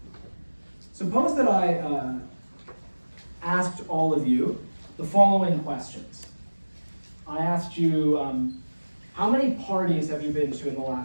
Suppose that I asked all of you the following questions. I asked you, how many parties have you been to in the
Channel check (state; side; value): inverted; both; correlation -1.00